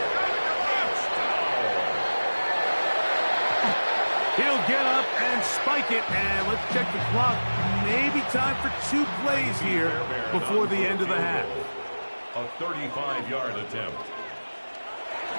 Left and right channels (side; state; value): both; inverted; correlation -1.00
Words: He'll get up and spike it, and let's check the clock. Maybe time for 2 plays here before the end of the half. A 35-yard attempt.